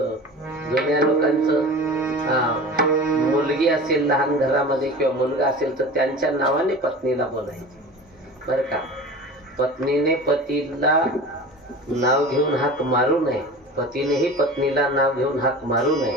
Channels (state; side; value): normal; both; correlation 0.36